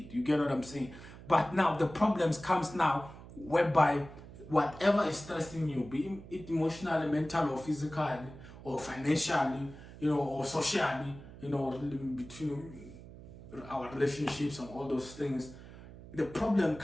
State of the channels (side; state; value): right; noise; hum, 16 dB below the sound